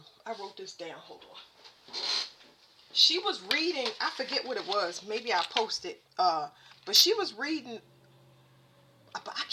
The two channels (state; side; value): identical; both; correlation 1.00